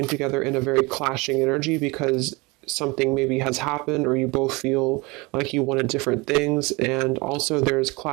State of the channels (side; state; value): left; quieter; 25.5 dB